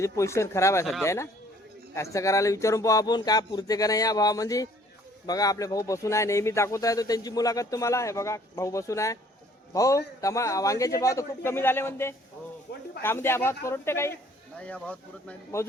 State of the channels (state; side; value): normal; both; correlation 0.58